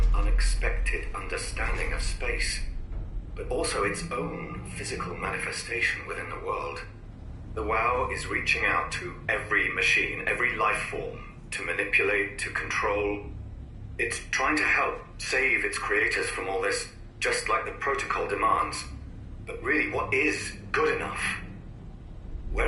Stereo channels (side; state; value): both; identical; correlation 1.00